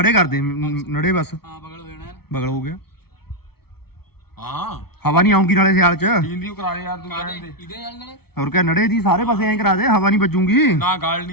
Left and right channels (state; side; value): late; right; 0.95 ms